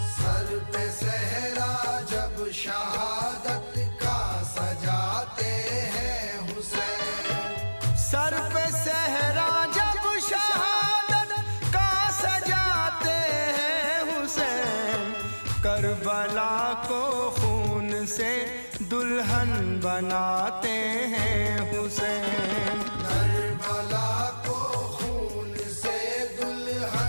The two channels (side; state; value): both; inverted; correlation -1.00